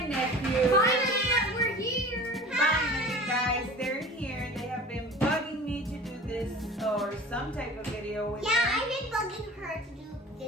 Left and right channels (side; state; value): both; normal; correlation 0.40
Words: nephew. Finally, we're here. Finally, guys, they're here. They have been bugging me to do this or some type of video with Yeah, them. I've been bugging her to do